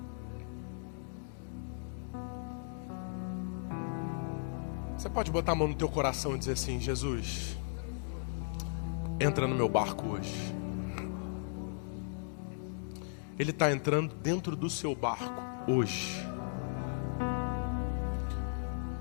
Você pode botar a mão no teu coração e dizer assim: Jesus, entra no meu barco hoje. Ele está entrando dentro do seu barco hoje.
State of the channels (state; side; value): silent; right; digital silence